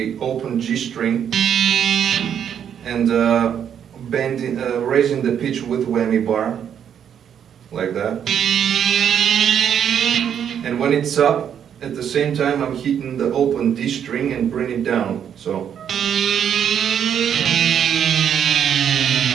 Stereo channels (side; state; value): left; quieter; 8.7 dB